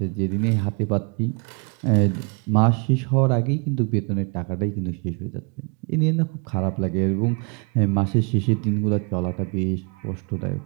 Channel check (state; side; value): quieter; left; 34.6 dB